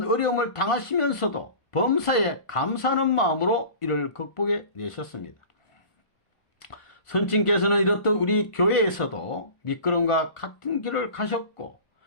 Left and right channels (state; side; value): late; right; 1.5 ms